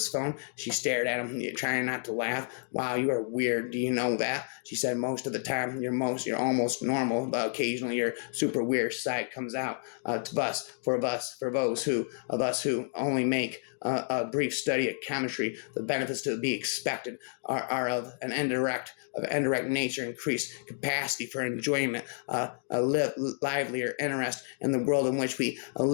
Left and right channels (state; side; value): silent; right; digital silence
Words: phone. She stared at him, trying not to laugh. Wow, you are weird. Do you know that? She said, most of the time you're almost normal, but occasionally your super weird side comes out. For those of us who only make a brief study of chemistry, the benefits to be expected are of an indirect nature, increased capacity for enjoyment, livelier interest in the world in which we